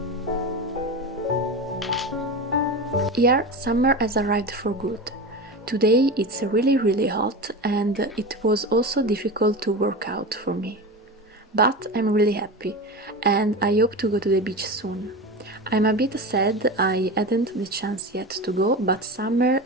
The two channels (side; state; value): both; normal; correlation 0.25